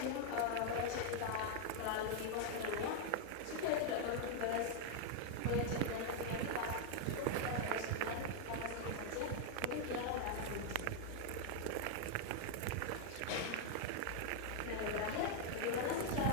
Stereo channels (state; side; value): different; both; correlation 0.00